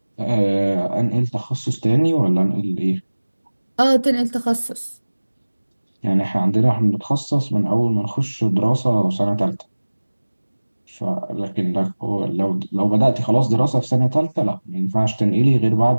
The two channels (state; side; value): inverted; both; correlation -1.00